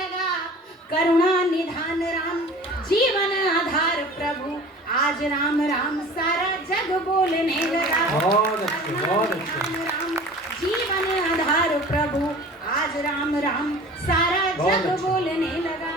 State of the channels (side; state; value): both; normal; correlation 0.42